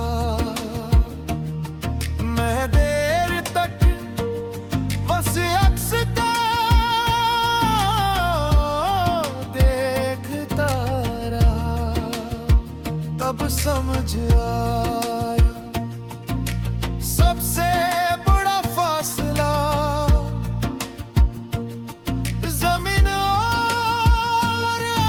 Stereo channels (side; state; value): both; identical; correlation 1.00